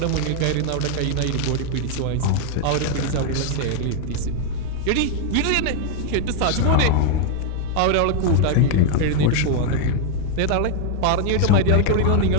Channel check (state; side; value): different; both; correlation 0.00